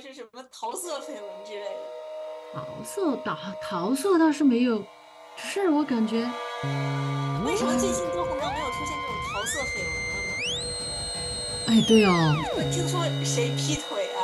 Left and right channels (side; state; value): both; identical; correlation 1.00